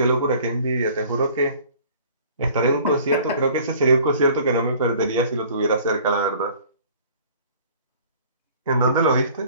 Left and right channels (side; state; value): both; inverted; correlation -0.51